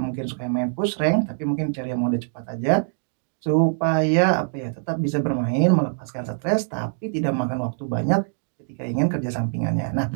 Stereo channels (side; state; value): left; silent; digital silence